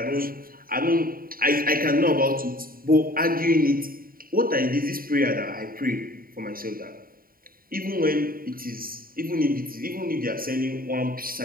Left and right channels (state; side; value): late; left; 0.42 ms